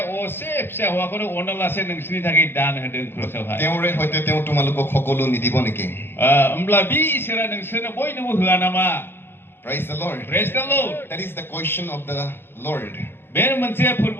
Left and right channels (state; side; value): late; right; 0.11 ms